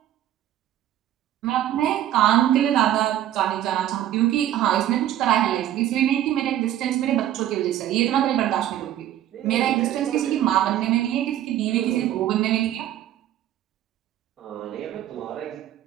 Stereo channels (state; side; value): quieter; left; 12.1 dB